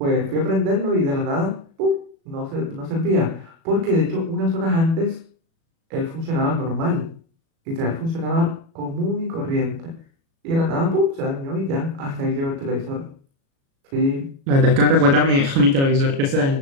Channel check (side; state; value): left; late; 36 ms